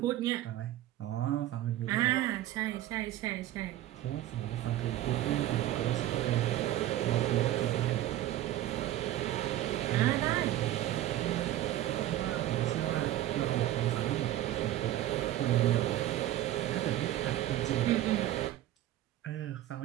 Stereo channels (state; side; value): quieter; left; 13.7 dB